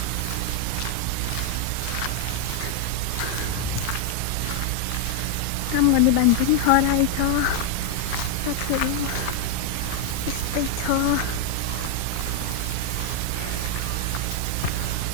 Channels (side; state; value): both; different; correlation 0.00